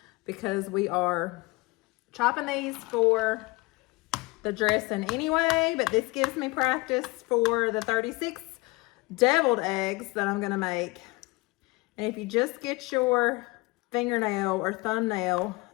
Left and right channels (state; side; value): quieter; right; 23.8 dB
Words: because we are chopping these for the dressing anyway, but this gives me practice for the 36 deviled eggs that I'm gonna make. And if you just get your fingernail or thumbnail